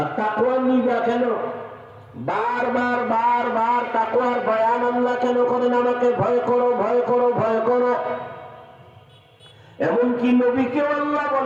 তাকওয়া নিবা কেন? বারবার বারবার তাকওয়ার বয়ান আল্লাহ কেন করেন? আমাকে ভয় করো, ভয় করো, ভয় করো। এমনকি নবীকে আল্লাহ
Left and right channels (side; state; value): both; identical; correlation 1.00